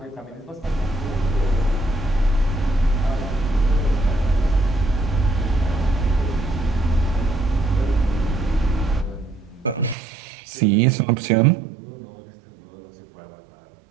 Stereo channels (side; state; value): left; drops out; at 10.0 s